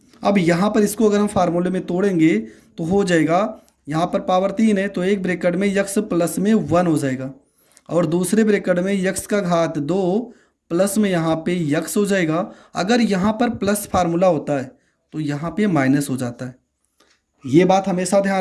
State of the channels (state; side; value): identical; both; correlation 1.00